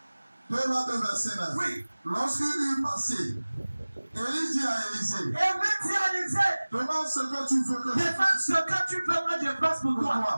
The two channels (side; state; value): both; inverted; correlation -1.00